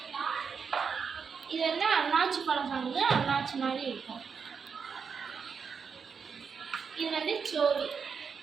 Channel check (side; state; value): left; quieter; 6.1 dB